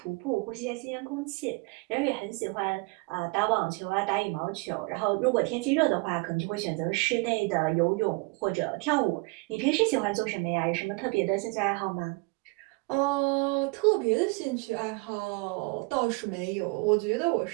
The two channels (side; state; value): left; quieter; 28.0 dB